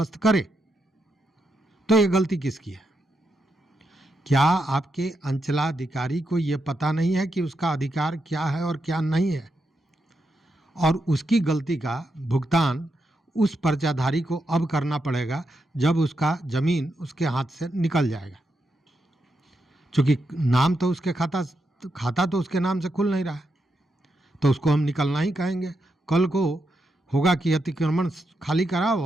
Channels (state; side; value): normal; both; correlation 0.84